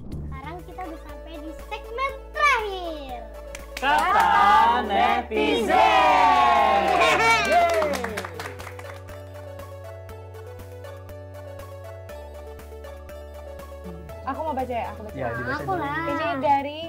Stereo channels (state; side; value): identical; both; correlation 1.00